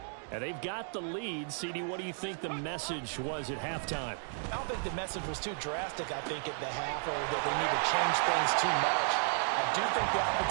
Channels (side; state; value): left; silent; 55 dB below the other